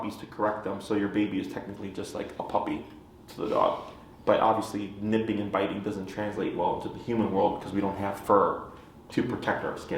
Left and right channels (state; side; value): identical; both; correlation 1.00